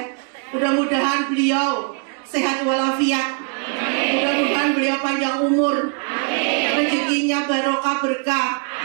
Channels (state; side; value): quieter; left; 39.6 dB